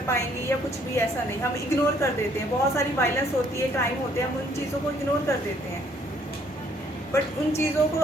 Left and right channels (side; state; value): both; normal; correlation 0.64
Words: पाएंगे या कुछ भी ऐसा नहीं. हम इग्नोर कर देते हैं. बहुत सारी वायलेंस होती है, क्राइम होते हैं, हम उन चीज़ों को इग्नोर कर देते हैं. बट उन चीज़ों को